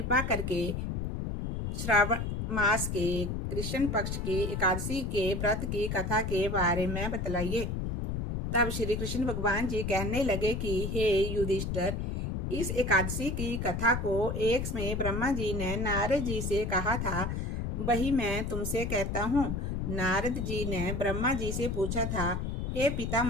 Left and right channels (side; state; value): left; noise; rumble, 2 dB below the sound